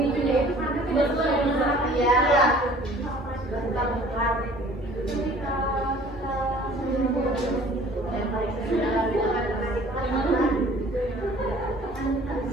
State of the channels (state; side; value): normal; both; correlation 0.50